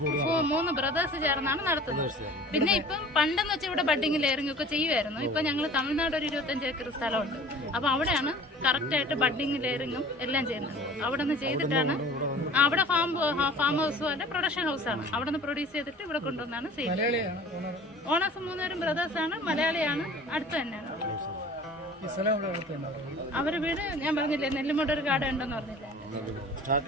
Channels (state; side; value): normal; both; correlation 0.44